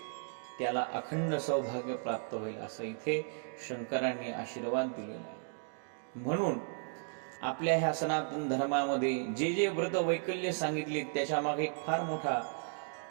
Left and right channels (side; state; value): left; silent; 55 dB below the other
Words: त्याला अखंड सौभाग्य प्राप्त होईल असं इथे शंकरांनी आशीर्वाद दिलेला आहे. म्हणून आपल्या ह्या सनातन धर्मामध्ये जे व्रत वैकल्य सांगितले त्याच्या मागे एक फार मोठा